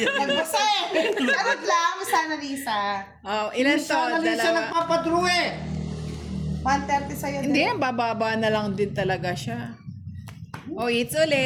eh. Charot lang, Miss Annalisa. Oh, ilan to? Sana rin siya Dalawa. nagpapadrew eh! 130 sa'yo. Hindi, bababa na lang din talaga siya. Oh, it's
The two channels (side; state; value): both; identical; correlation 1.00